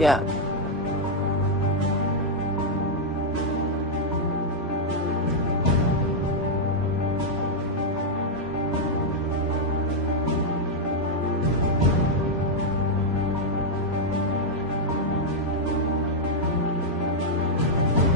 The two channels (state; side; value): normal; both; correlation -0.01